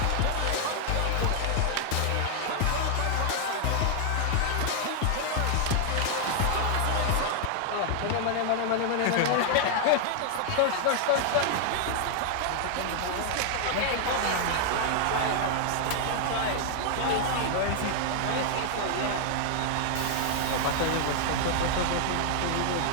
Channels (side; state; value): both; different; correlation 0.00